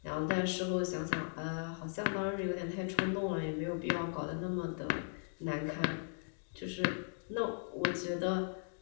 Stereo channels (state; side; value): silent; right; digital silence